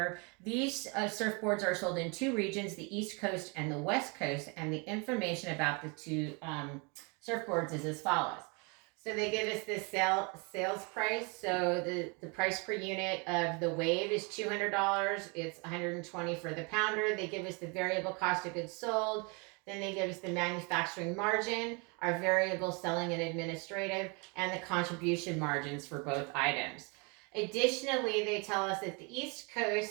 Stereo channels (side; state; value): left; quieter; 31.6 dB